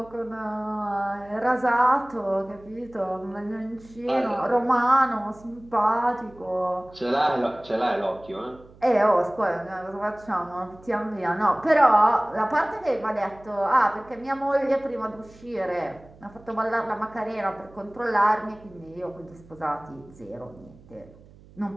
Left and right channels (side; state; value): right; noise; hum, 24 dB below the sound